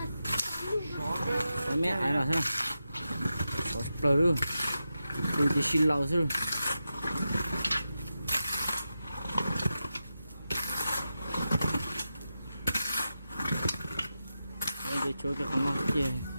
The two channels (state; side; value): inverted; both; correlation -0.90